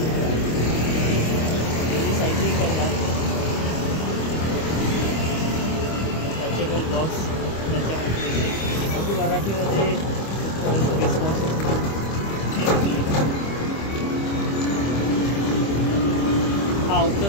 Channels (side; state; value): right; late; 25 ms